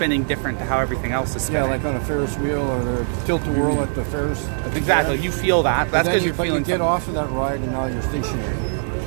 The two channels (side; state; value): left; silent; digital silence